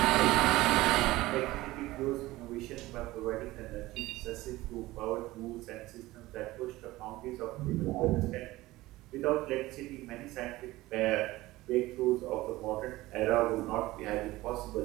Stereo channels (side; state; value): left; quieter; 18.3 dB